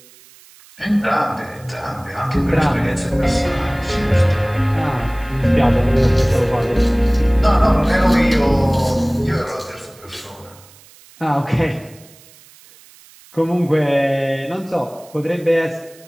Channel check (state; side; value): noise; right; hiss, 25 dB below the sound